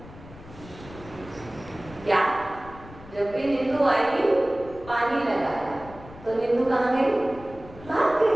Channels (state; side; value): noise; left; rumble, 18 dB below the sound